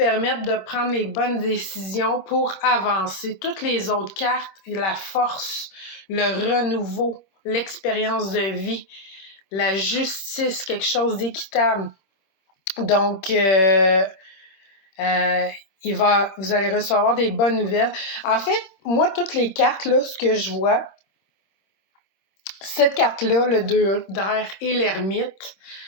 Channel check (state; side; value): late; right; 26 ms